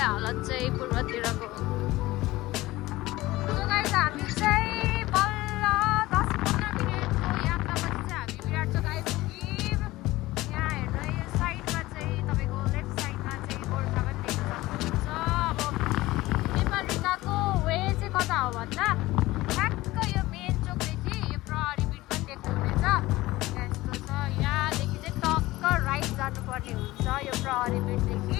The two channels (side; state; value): right; quieter; 18.4 dB